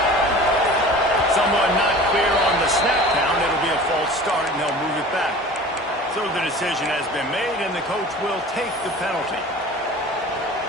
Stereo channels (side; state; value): both; normal; correlation 0.41